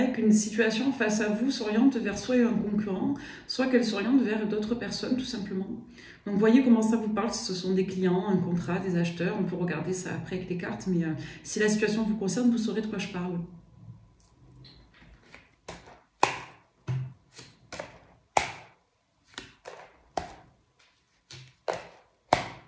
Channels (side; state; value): both; identical; correlation 1.00